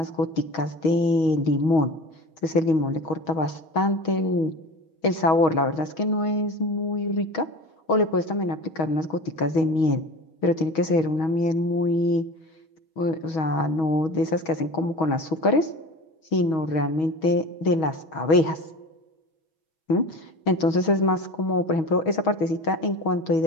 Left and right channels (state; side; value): late; right; 6.3 ms